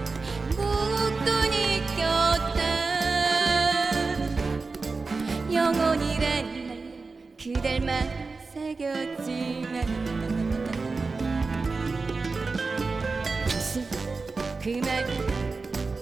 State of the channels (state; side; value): quieter; left; 4.1 dB